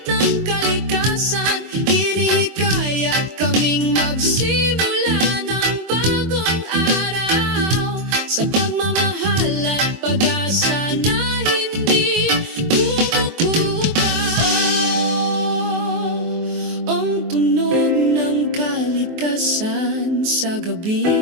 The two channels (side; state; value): left; late; 23 ms